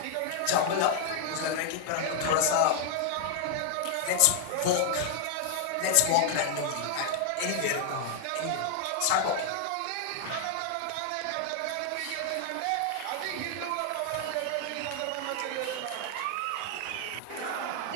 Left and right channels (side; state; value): both; different; correlation 0.00